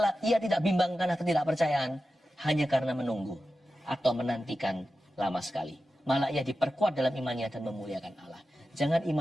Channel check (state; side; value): normal; both; correlation 0.93